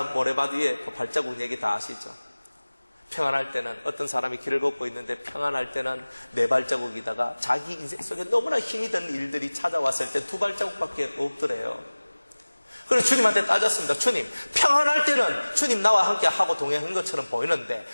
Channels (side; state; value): both; inverted; correlation -1.00